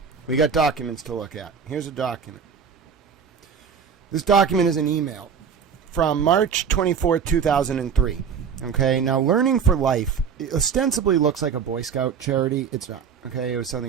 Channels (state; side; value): quieter; left; 6.9 dB